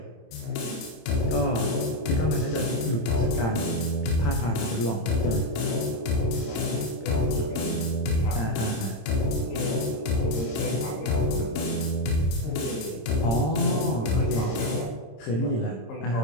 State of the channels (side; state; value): right; late; 26 ms